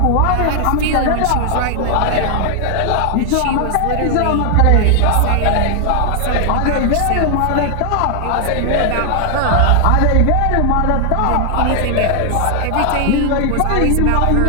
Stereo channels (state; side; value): different; both; correlation 0.00